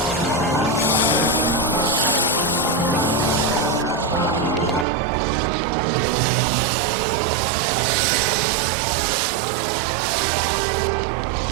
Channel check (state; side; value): drops out; left; at 4.9 s